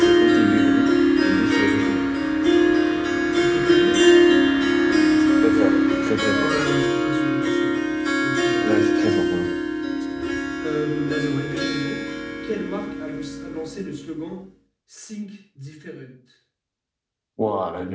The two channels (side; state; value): both; identical; correlation 1.00